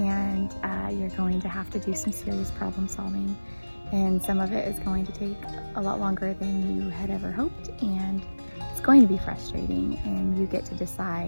you're going to have to do some serious problem solving. And some of it is going to take a lot longer than you had ever hoped. And it's going to be frustrating. And you get to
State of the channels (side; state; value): both; inverted; correlation -1.00